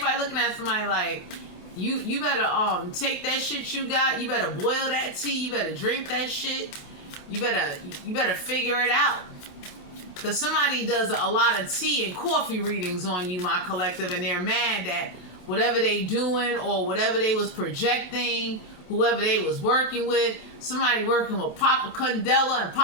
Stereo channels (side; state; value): right; late; 28 ms